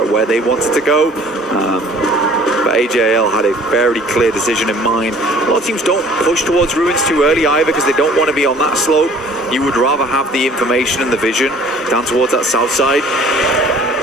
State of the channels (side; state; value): both; normal; correlation 0.52